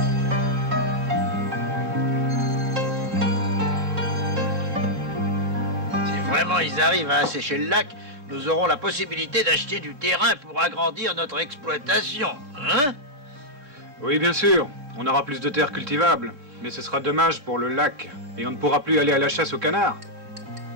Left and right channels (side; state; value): left; late; 3.6 ms